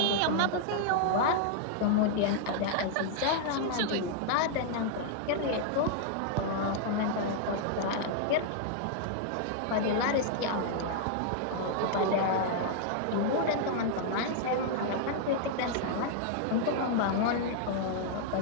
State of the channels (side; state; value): both; different; correlation -0.01